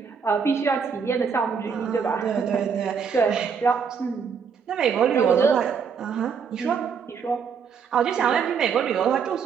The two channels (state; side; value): quieter; left; 6.4 dB